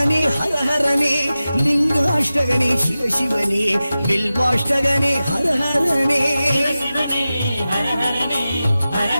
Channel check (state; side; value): inverted; both; correlation -0.94